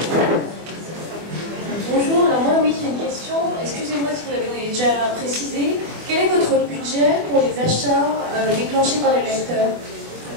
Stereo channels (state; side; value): late; left; 24 ms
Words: Bonjour, alors moi oui j'ai une question, excusez-moi si vous l'avez déjà précisé, quel est votre budget pour les achats déclenchés par les lecteurs?